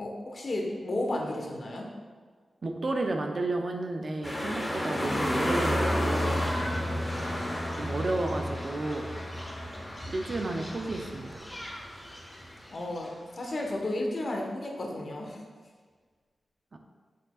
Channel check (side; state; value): both; normal; correlation 0.93